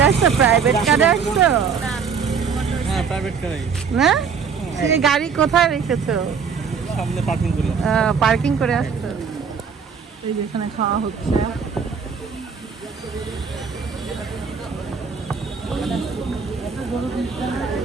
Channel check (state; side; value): quieter; left; 6.1 dB